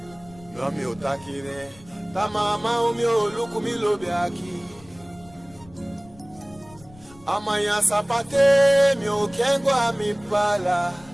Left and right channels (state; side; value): noise; left; rumble, 24 dB below the sound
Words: No mi otakire Ta mama umi oluku mi lobe aki Amaya sapate mi okengwa mi pala